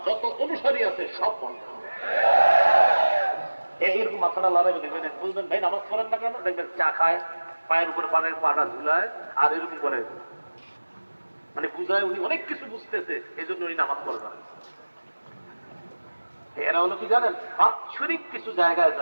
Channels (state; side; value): inverted; both; correlation -1.00